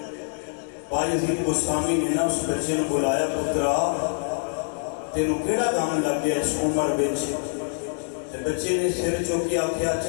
بایزید بستامی نے نا اس بچے نے بلایا پترا تینوں کیڑا کام لگ گیا اس عمر بچ تے بچے نے سر چوکی آکھیا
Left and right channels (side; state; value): right; silent; 60 dB below the other